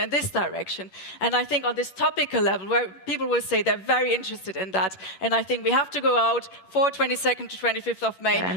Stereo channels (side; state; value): right; late; 11 ms